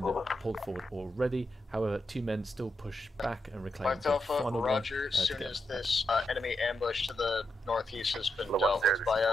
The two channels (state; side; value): normal; both; correlation 0.84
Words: Over. pulled forward already. However, 2 men still push back and reclaim 5 the Alpha, final Roger. one. As soon as this enemy ambush to the northeast has been dealt with by